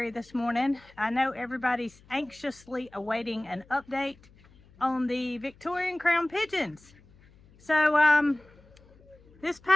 this morning. I know everybody's anxiously awaiting an update on the Victorian crown pigeons. So this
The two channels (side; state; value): left; noise; hum, 27 dB below the sound